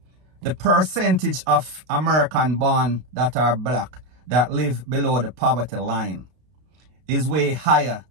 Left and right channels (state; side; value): late; left; 32 ms